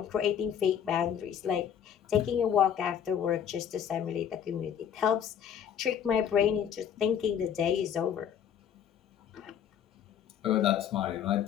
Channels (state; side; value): quieter; right; 8.8 dB